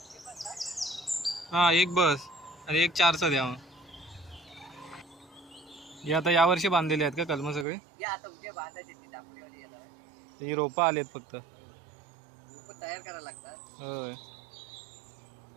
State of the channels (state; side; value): drops out; left; at 7.7 s